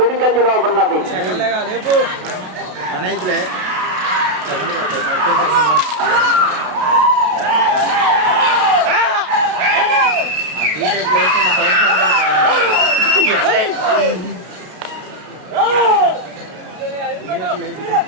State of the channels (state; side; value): late; left; 32 ms